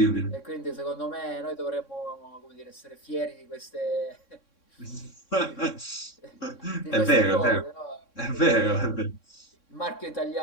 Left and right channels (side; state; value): right; late; 3.6 ms